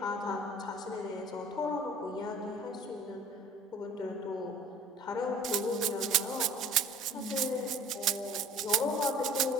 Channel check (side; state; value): both; normal; correlation 0.49